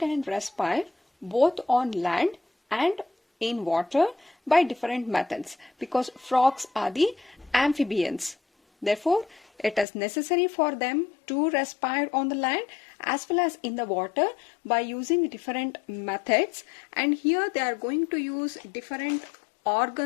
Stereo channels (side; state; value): right; drops out; at 9.9 s